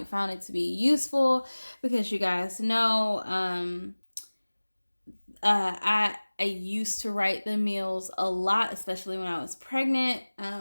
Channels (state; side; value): inverted; both; correlation -1.00